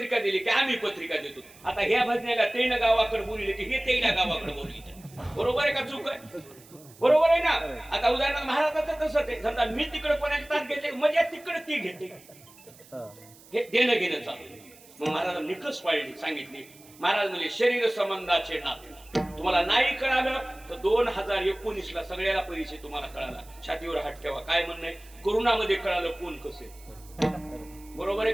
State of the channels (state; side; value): noise; right; hiss, 23 dB below the sound